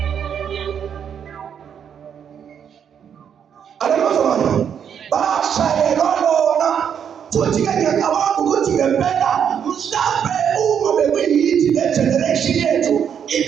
Aleluya. Bashayelwa lona futhi-ke ngiyacabanga ukuthi ngempela mhlampe uma bekuyithi le generation yethu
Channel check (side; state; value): left; quieter; 8.1 dB